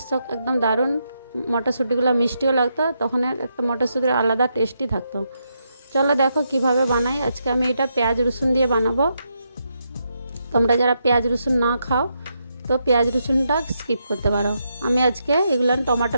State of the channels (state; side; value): inverted; both; correlation -0.81